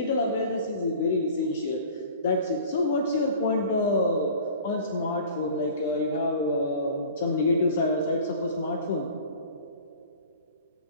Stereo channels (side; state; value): both; inverted; correlation -0.43